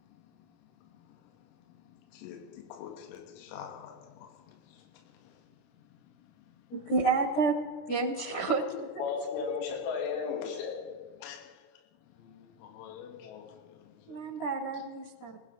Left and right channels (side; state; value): right; late; 17 ms